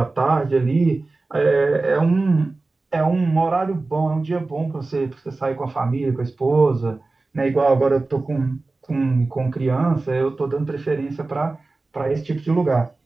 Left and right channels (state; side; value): quieter; left; 3.4 dB